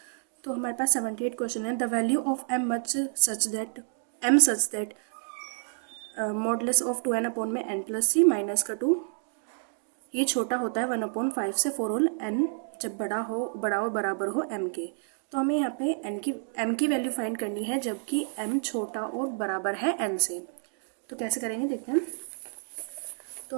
तो हमारे पास 78 क्वेश्चन है। The value of am such that modulus of 2n upon में n प्लस सी माइनस का 2 ये छोटा होता है 1/5 से 4 होल n जब बड़ा और बराबर हो m के। तो हमें यहाँ पे m की वैल्यू फाइंड करनी है जबकि m छोटा और बराबर है n से। तो कैसे करेंगे देखते हैं।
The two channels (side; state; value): left; silent; digital silence